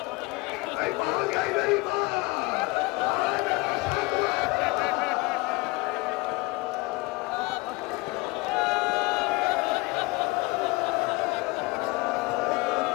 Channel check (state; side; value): quieter; right; 23.7 dB